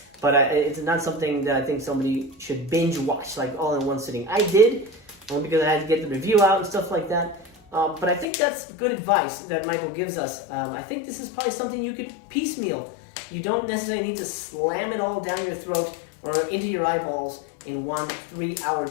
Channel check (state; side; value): drops out; right; at 8.2 s